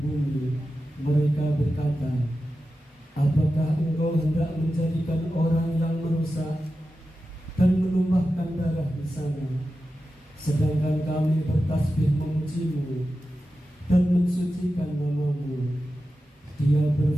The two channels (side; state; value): both; normal; correlation 0.92